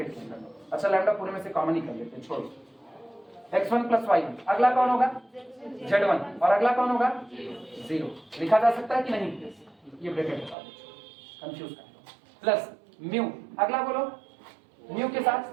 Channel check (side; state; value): left; drops out; at 10.6 s